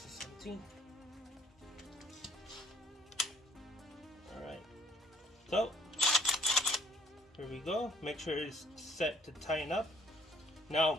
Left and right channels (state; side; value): normal; both; correlation 0.61